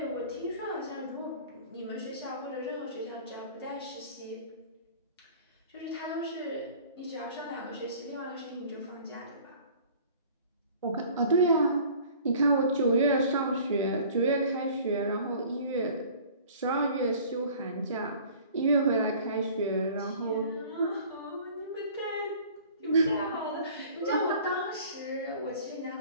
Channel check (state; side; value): inverted; both; correlation -0.48